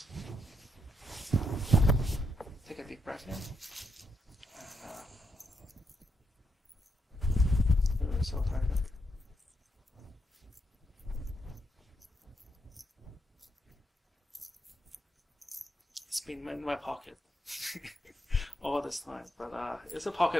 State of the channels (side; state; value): both; normal; correlation 0.80